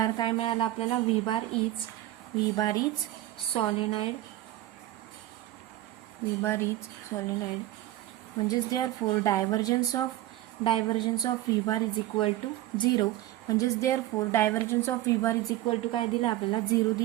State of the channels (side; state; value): left; quieter; 15.1 dB